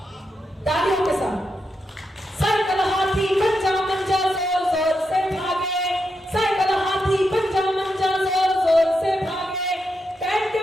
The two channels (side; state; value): both; normal; correlation 0.85